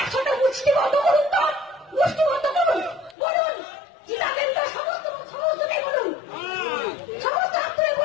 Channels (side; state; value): right; drops out; at 3.2 s